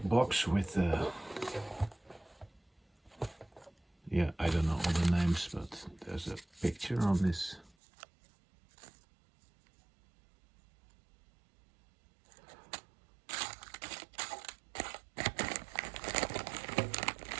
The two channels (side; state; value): left; drops out; at 7.7 s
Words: box with yeah, I don't know all the names, but there's a picture on this.